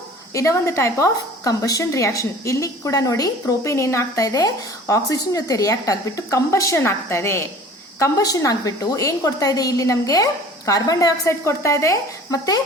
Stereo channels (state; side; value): normal; both; correlation 0.45